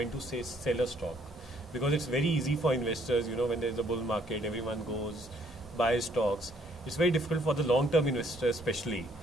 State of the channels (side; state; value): both; normal; correlation 0.65